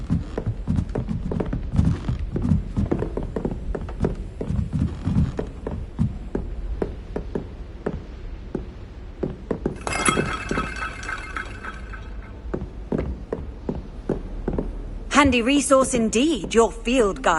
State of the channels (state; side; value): identical; both; correlation 1.00